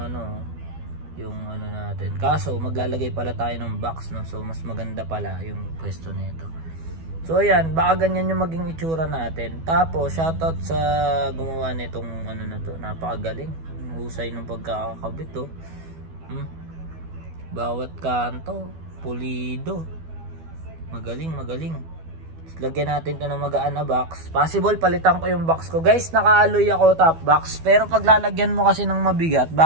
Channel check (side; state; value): left; late; 12 ms